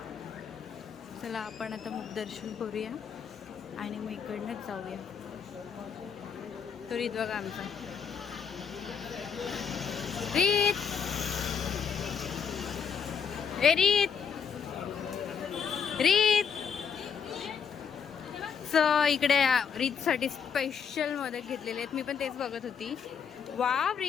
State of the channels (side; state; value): right; quieter; 6.8 dB